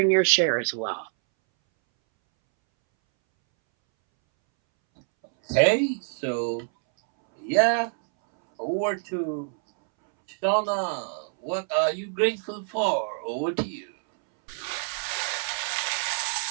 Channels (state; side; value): silent; left; 61 dB below the other